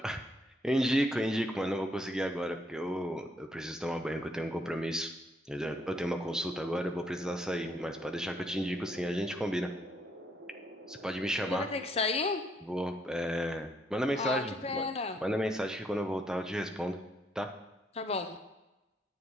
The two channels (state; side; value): normal; both; correlation 0.71